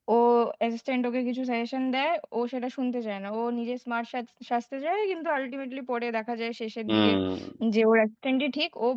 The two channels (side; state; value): both; identical; correlation 1.00